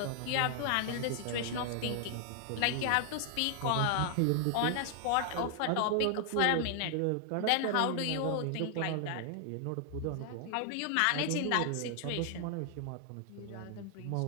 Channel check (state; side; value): different; both; correlation 0.00